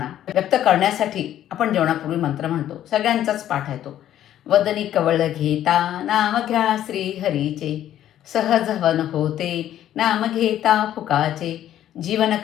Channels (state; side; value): quieter; right; 11.7 dB